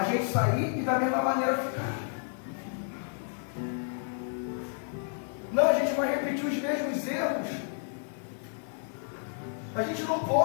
gente sair e da mesma maneira ficar. Não, a gente vai repetir os mesmos erros. A gente não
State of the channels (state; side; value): silent; right; 57 dB below the other